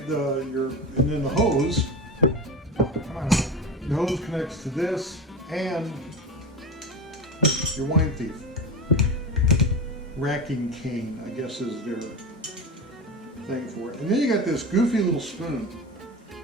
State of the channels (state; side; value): normal; both; correlation 0.24